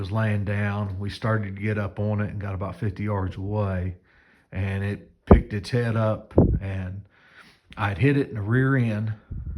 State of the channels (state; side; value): identical; both; correlation 1.00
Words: laying down. We started to get up on it and got about 50 yards away, and it picked its head up, and I'd hit it in the rear end,